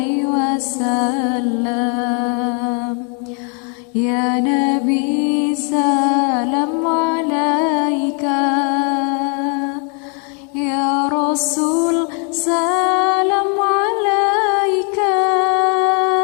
wasallam. Ya Nabi salam alaika, ya Rasul salam alaika,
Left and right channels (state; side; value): quieter; right; 38.4 dB